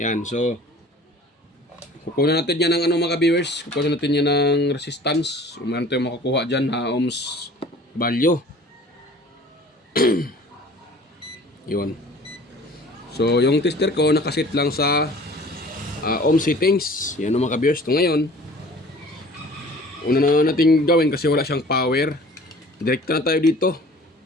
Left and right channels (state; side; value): normal; both; correlation 0.47